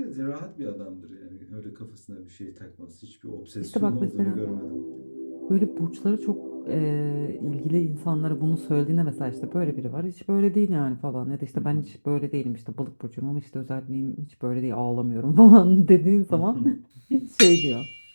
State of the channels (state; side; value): inverted; both; correlation -1.00